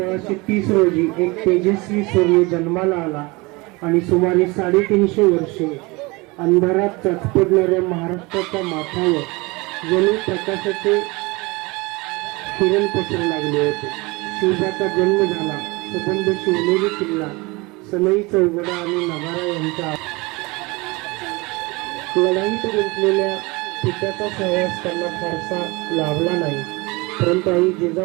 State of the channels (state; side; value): quieter; left; 24.9 dB